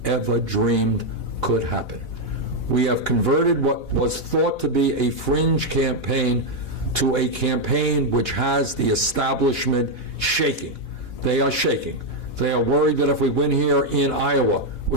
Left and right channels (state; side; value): late; right; 4.1 ms